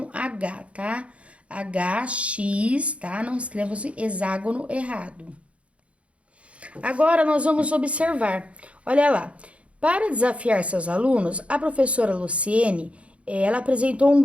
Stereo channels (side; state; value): left; late; 0.062 ms